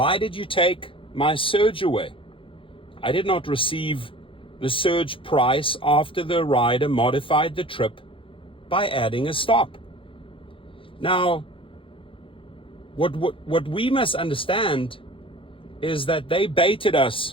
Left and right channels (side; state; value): right; late; 0.25 ms